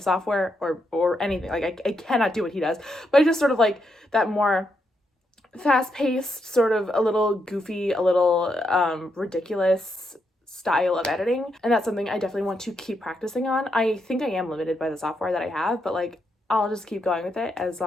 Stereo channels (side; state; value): both; normal; correlation 0.81